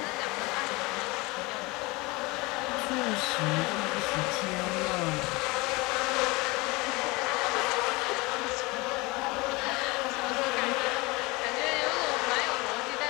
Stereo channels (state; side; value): quieter; right; 24.0 dB